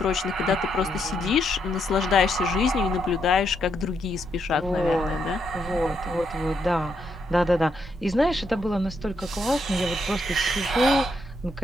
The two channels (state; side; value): normal; both; correlation 0.78